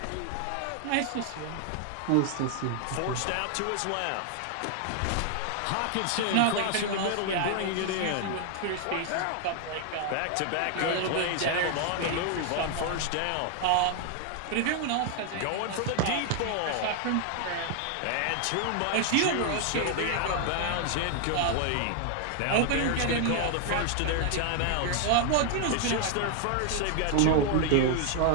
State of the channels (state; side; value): different; both; correlation 0.00